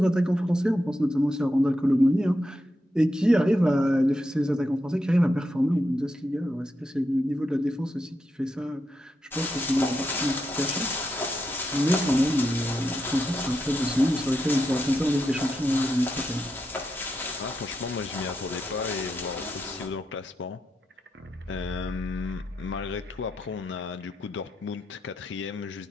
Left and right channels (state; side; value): normal; both; correlation 0.85